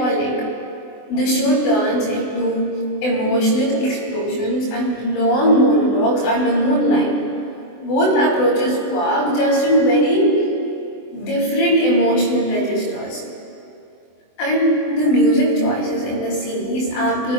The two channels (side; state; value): right; late; 24 ms